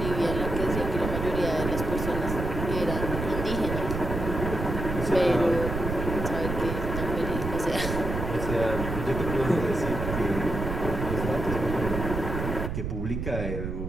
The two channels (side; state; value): right; noise; rumble, 4 dB below the sound